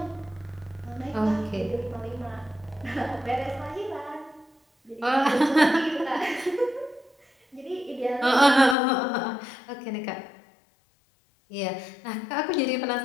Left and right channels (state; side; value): drops out; right; at 8.8 s